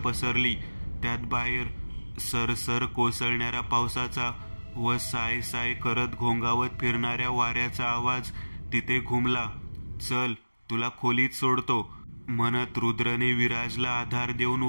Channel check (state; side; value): inverted; both; correlation -1.00